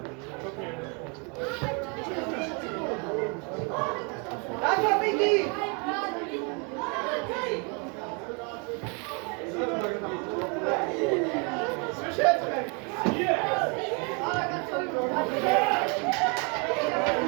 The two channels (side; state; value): left; quieter; 34.0 dB